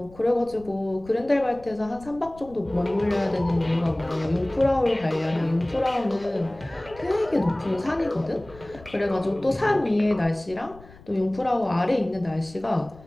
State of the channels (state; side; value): noise; left; rumble, 21 dB below the sound